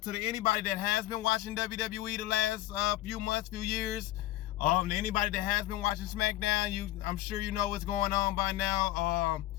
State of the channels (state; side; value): quieter; right; 15.4 dB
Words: to anybody that has been watching WWE the last few months, few years, to anybody that has been watching SmackDown, I'm sure you know what's going on by now.